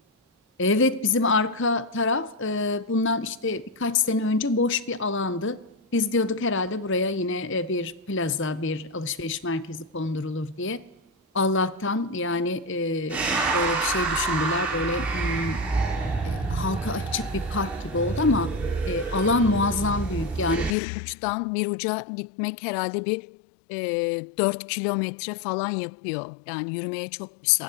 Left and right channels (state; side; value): drops out; right; at 20.8 s